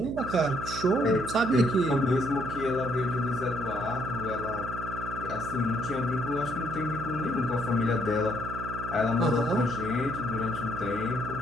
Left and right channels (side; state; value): right; noise; hum, 8 dB below the sound